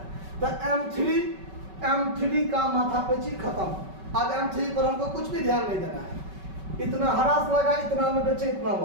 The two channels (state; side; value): late; left; 5.3 ms